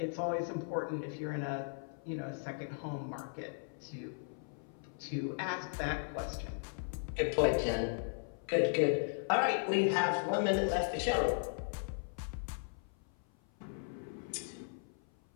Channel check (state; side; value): silent; right; 53 dB below the other